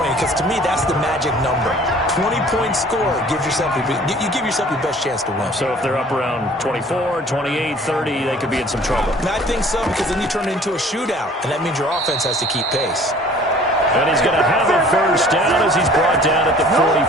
because to me, that's the magic number. 20-point score gives yourself you give yourself your best chance to win. So if they're up around 24, 28, 30, they could be in some trouble. And I think so, because then you turn it into a shootout, and that means your offense has to keep pace. And he's going to have a 1st down as he's brought down at the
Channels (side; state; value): both; normal; correlation 0.51